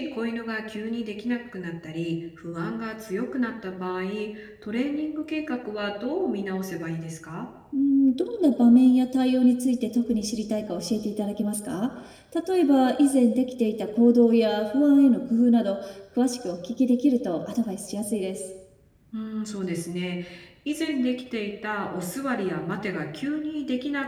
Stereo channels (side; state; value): both; identical; correlation 1.00